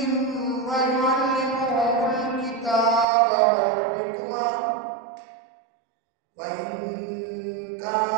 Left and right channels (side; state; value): left; drops out; at 3.1 s